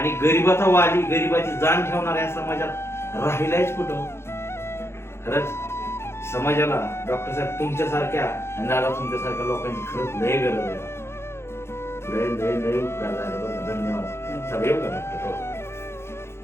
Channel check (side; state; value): right; late; 0.12 ms